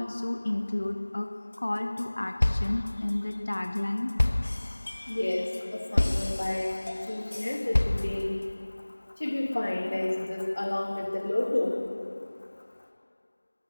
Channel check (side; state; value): both; inverted; correlation -1.00